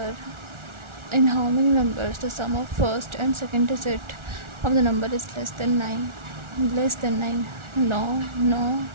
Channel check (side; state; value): left; late; 1.4 ms